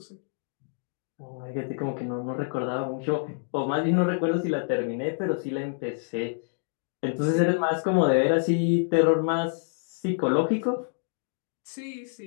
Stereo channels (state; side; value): silent; right; digital silence